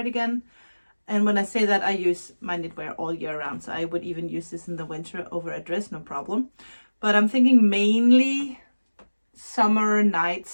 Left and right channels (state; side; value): inverted; both; correlation -1.00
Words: And when I say that, I use my knitwear all year round, so I would even use this in the winter over a dress, no problem. But I'm thinking mainly summer